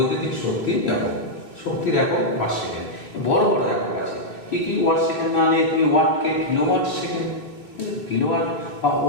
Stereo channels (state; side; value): late; right; 3.2 ms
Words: শক্তির একক, শক্তির একক ওয়াট সেকেন্ড। বড় বড় একক আছে, কি কি ওয়াট সেকেন্ড না নিয়ে তুমি ওয়াটকে কিলোওয়াট সেকেন্ড, কিলোওয়াট বা